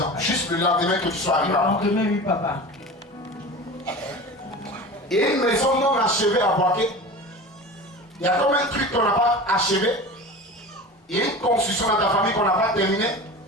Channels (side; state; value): both; normal; correlation 0.33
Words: juste le lendemain que tu sois arrivé. Le lendemain, oui, papa. Et une maison non achevée à Boaké. Il y a comme un truc qu'on n'a pas achevé. Il y a une construction dans ta famille qu'on n'a pas terminée.